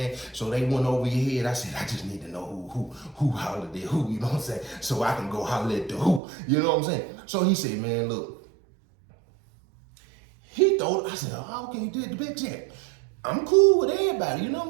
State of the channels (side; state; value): left; drops out; at 6.2 s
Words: So they went over your head. I said, I just need to know who hollered at who, you know what I'm saying? So I can go holler at the who, you know what I'm saying? So he said, man, look, he thought, I said, oh, okay, you did the big check. I'm cool with everybody, you know what